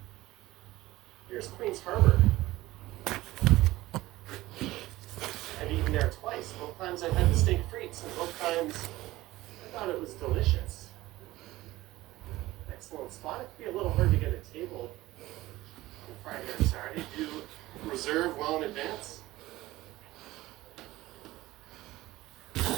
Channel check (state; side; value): quieter; left; 17.4 dB